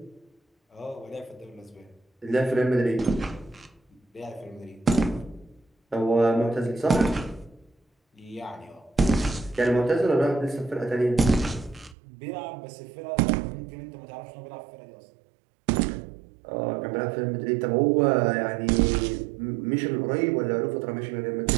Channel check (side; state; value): left; drops out; at 12.0 s